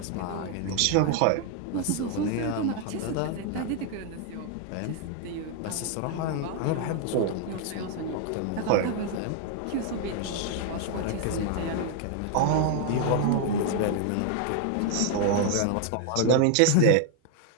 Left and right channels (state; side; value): different; both; correlation 0.00